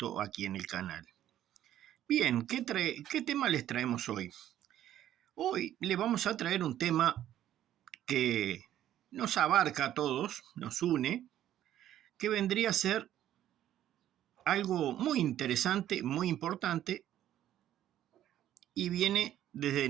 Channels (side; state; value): left; quieter; 11.9 dB